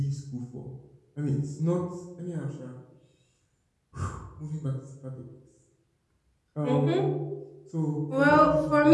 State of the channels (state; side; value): identical; both; correlation 1.00